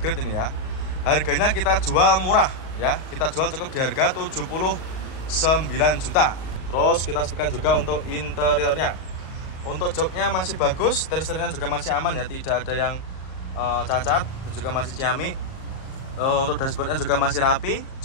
ini ya. Harganya kita jual murah ya, kita jual cukup di harga 79 juta. Terus kita sepikan juga untuk interiornya. Untuk joknya masih bagus, setir-setirnya juga masih aman ya, tidak ada yang cacat, dan juga masih ciamik. Untuk dashboardnya juga masih rapi,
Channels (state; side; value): late; right; 38 ms